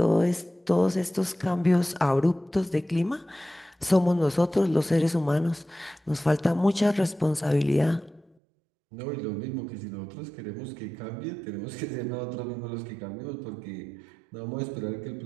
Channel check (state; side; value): drops out; left; at 8.3 s